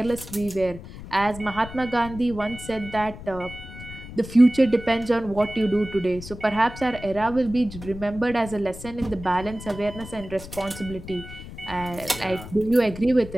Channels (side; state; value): left; noise; rumble, 13 dB below the sound